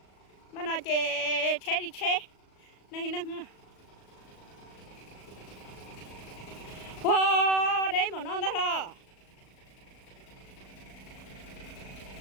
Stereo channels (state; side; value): late; right; 37 ms